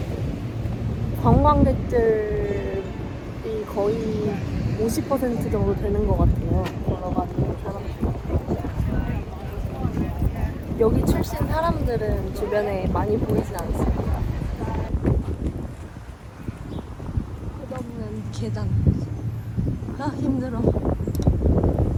관광객들이 거의 50% 정도 되는 것 같아요. 걸어가는 사람들. 여기 출신 사람들은 주변에 많이 보이진 않습니다. 끝없는 계단. 아 힘들어.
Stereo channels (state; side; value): identical; both; correlation 1.00